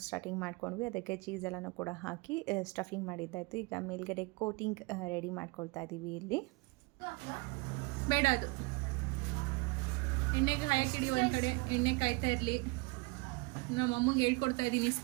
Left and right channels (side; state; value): left; quieter; 26.6 dB